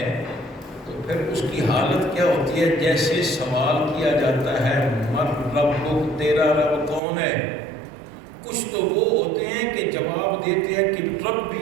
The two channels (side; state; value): left; drops out; at 7.0 s